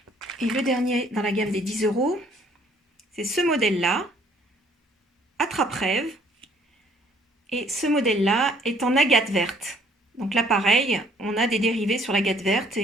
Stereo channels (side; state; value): both; normal; correlation 0.61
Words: Et le dernier dans la gamme des 10 €, c'est ce modèle-là, attrape-rêve. Et ce modèle-là est en agate verte. Donc là, pareil, on a des dérivés sur l'agate verte